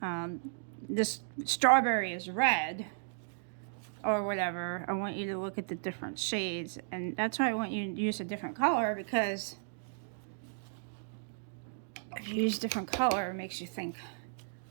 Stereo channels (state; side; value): silent; left; digital silence